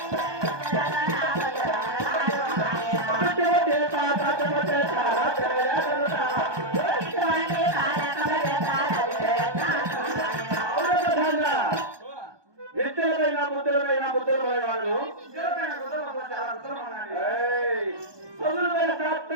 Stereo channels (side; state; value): left; late; 1.2 ms